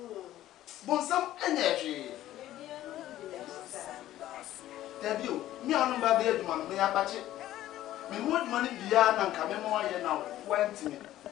Bonsam enye Debut, me on baby man, me apache. Me would money beyond and come more here now. 20 minutes.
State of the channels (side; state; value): right; quieter; 13.8 dB